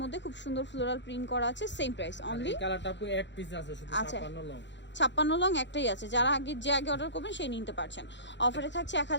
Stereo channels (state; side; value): late; right; 0.52 ms